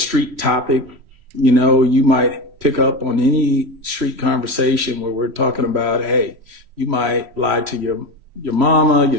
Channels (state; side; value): late; left; 3.1 ms